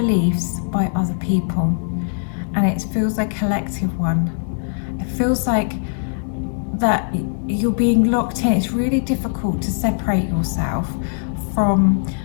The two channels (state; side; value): silent; right; 65 dB below the other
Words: by other people, and it feels like a collective one. It feels like that you're being locked in. It's really difficult to separate yourself from